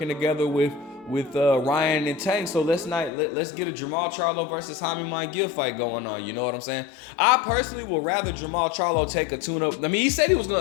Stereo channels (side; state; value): right; drops out; at 3.1 s